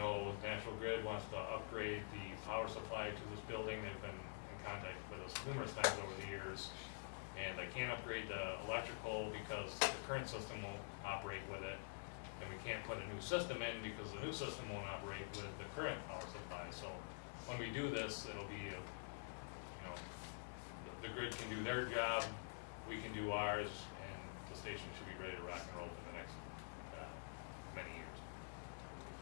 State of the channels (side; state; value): right; silent; digital silence